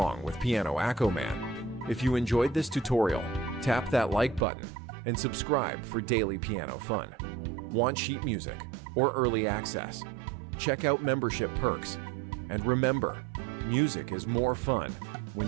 with Piano AccoMan. If you enjoyed this tutorial, tap that like button and subscribe for daily piano fun. Want sheet music or early access? Check out membership perks. And remember, music is more fun when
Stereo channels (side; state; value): left; drops out; at 4.5 s